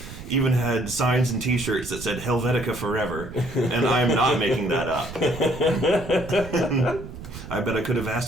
even had signs and T-shirts that said Helvetica Forever, and I'm not making that up. I bet I could have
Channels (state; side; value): noise; right; rumble, 12 dB below the sound